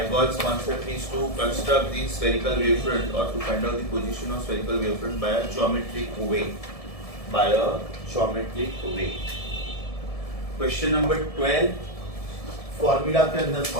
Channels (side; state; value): right; late; 1.7 ms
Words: concept is to construct the spherical wavefront or to find out the position of spherical wavefront by a geometric way. By a geometric way. Question number 12. Formula के अंदर